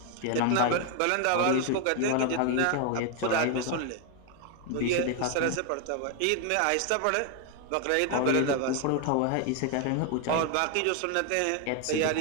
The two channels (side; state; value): both; different; correlation 0.01